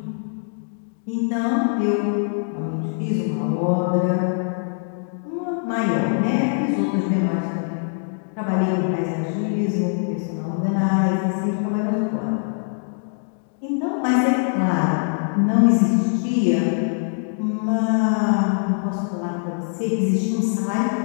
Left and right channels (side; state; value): right; silent; 64 dB below the other